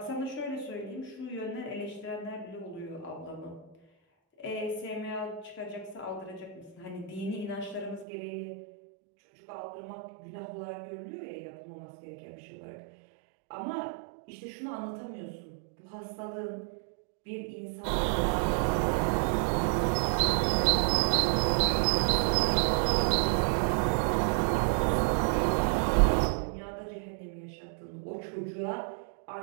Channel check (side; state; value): left; drops out; at 8.1 s